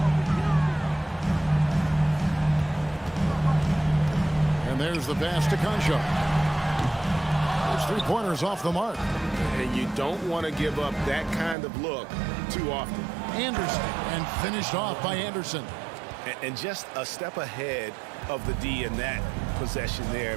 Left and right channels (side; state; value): left; drops out; at 11.6 s